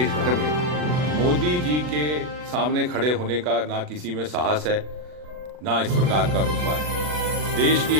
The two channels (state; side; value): late; left; 40 ms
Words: भर में मोदी जी के सामने खड़े होने का ना किसी में साहस है, ना इस प्रकार का रुतबा है। देश की